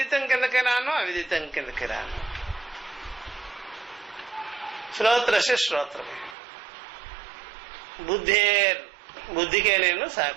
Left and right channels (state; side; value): drops out; left; at 6.4 s